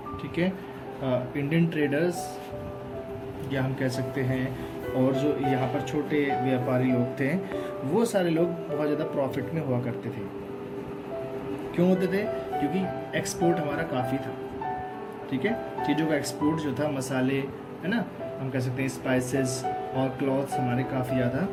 ठीक है, इंडियन ट्रेडर्स या हम कह सकते हैं, और जो यहाँ पर छोटे व्यापारी लोग थे, वो सारे लोग बहुत ज़्यादा प्रॉफिट में हुआ करते थे। क्यों होते थे? क्योंकि एक्सपोर्ट हमारा काफ़ी था, ठीक है, चीज़ों का एक्सपोर्ट जो था, मसाले, है ना, हम कह सकते हैं स्पाइसेस और क्लॉथ्स हमारे काफ़ी ज़्यादा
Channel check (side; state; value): both; identical; correlation 1.00